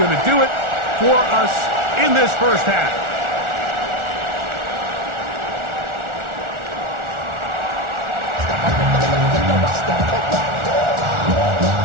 to do it for us in this first half.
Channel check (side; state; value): left; late; 1.4 ms